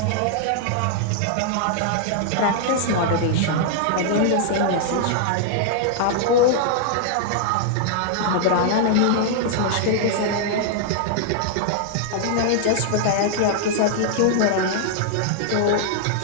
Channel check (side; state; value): both; different; correlation -0.01